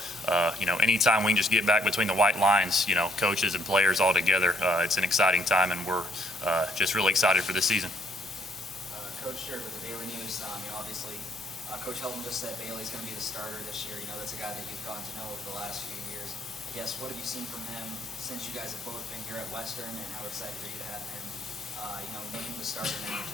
anytime we can just get back between the white lines, coaches and players all together, it's an exciting time, and we're just really excited for this season. Coach, here with the Bailey News, obviously, Coach Helton just said Bailey's going to be the starter this year. That's a guy that you've gotten to know over the last few years. I guess, what have you seen from him since you guys have both been here at Western, and how excited are you to have him, named the starter now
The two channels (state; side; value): normal; both; correlation 0.68